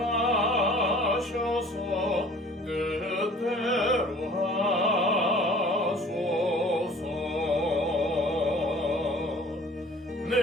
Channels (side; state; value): both; normal; correlation 0.49